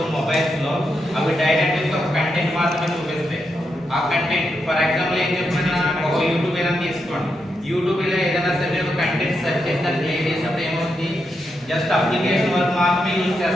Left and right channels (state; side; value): normal; both; correlation 0.84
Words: మొబైల్స్ లో అవి డైరెక్ట్ గా ఒక కంటెంట్ మాత్రమే చూపిస్తాయి. ఆ కంటెంట్ ఫర్ ఎగ్జాంపుల్ ఏం చెప్తున్నా, ఒక యూట్యూబ్ ఏదైనా తీసుకోండి. యూట్యూబ్ లో ఏదైనా సరే ఒక కంటెంట్ సెర్చ్ చేసి దాన్ని ప్లే చేసినప్పుడు ఏమవుతుంది, జస్ట్ అప్లికేషన్ వరకు మాత్రమే యూజ్